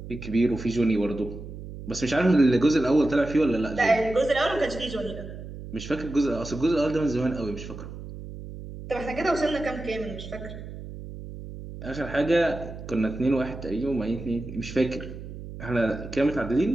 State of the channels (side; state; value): right; noise; hum, 11 dB below the sound